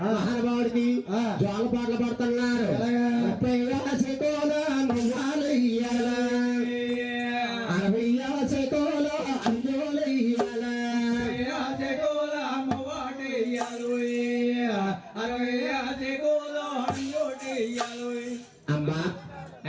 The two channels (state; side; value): identical; both; correlation 1.00